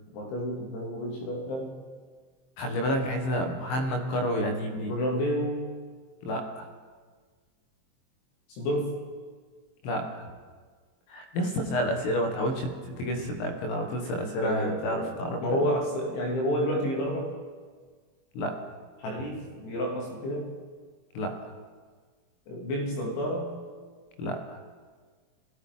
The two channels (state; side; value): late; right; 23 ms